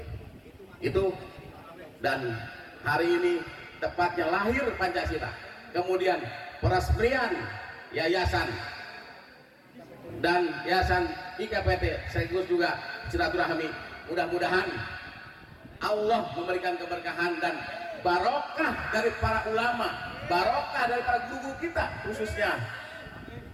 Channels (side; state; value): both; identical; correlation 1.00